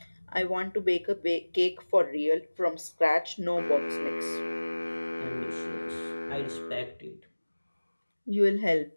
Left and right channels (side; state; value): both; inverted; correlation -1.00